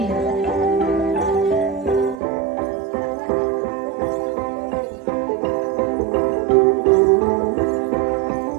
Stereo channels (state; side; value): drops out; left; at 2.2 s